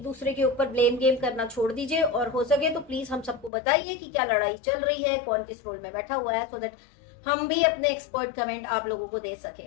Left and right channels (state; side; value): drops out; right; at 3.5 s